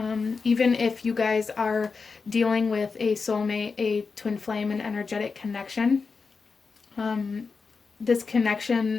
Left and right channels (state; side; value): quieter; right; 4.8 dB